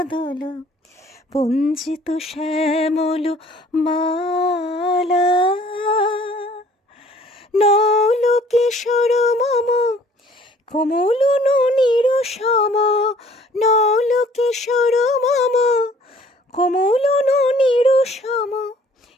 পঞ্জিত শ্যামল মালা। নল কিশোর মম কমলননির সম, নল কিশোর মম কমলননির সম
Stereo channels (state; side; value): normal; both; correlation 0.55